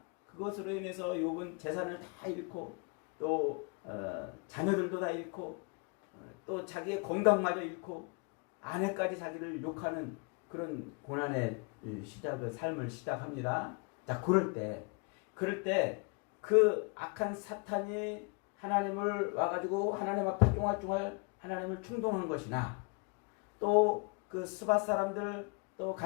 그것으로 인해서 욥은 재산을 다 잃고 또 자녀들도 다 잃고 또 자기의 건강마저 잃고 아내까지 자기를 욕하는 그런 고난의 삶을 시작합니다. 자, 그럴 때 그 악한 사탄이 하나님을 와가지고 하나님 앞에 쫑알쫑알 하나님을 충동한 것이나 또 그 스바 사람들 또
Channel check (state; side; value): quieter; right; 33.5 dB